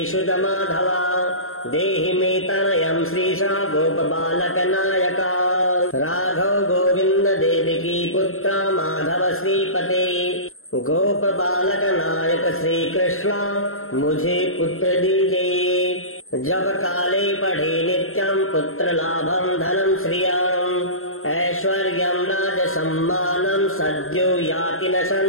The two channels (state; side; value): late; right; 0.62 ms